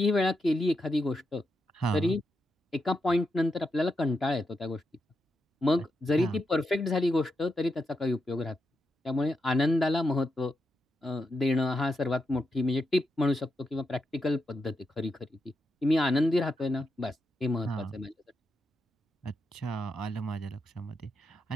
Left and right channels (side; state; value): both; normal; correlation 0.84